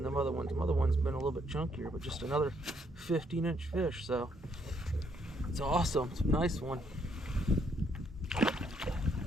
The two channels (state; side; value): normal; both; correlation 0.71